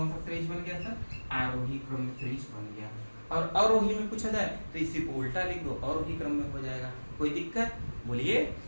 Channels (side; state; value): both; inverted; correlation -1.00